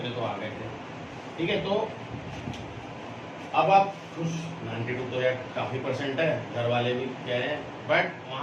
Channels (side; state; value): both; identical; correlation 1.00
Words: तो आ गए थे। ठीक है, तो अब आप खुश, 92 तो यार काफी परसेंट है, घर वाले भी कह रहे हैं, बट